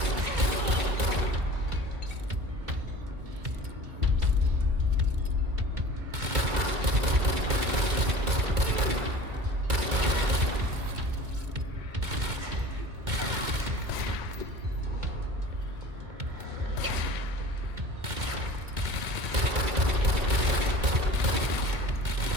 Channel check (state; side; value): late; left; 2.2 ms